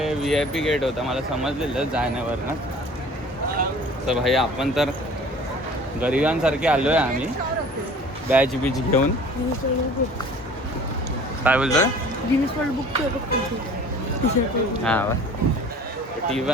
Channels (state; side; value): normal; both; correlation 0.47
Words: VIP गेट होता, मला समजलेलं जाण्यावरनं. तर भाई आपण तर गरिबांसारखे आलोय आम्ही, बॅच घेऊन. काय बोलतोय? हां,